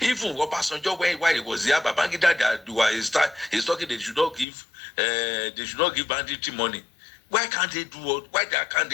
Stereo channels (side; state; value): right; drops out; at 4.5 s